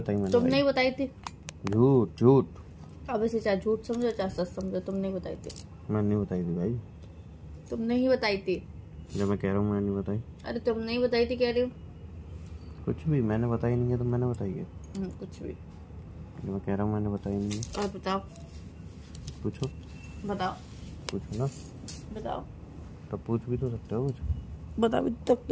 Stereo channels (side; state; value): both; identical; correlation 1.00